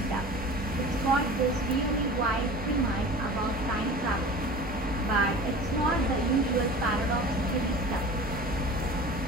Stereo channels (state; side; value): normal; both; correlation 0.38